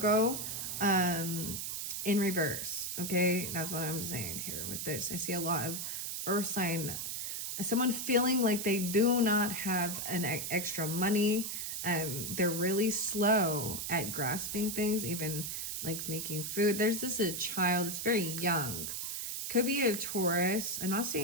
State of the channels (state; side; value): noise; right; hiss, 4 dB below the sound